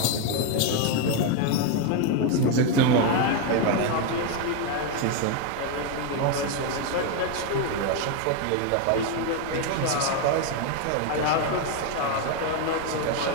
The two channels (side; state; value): both; different; correlation 0.02